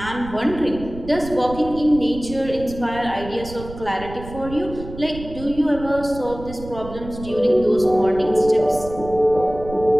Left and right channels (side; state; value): right; noise; rumble, 13 dB below the sound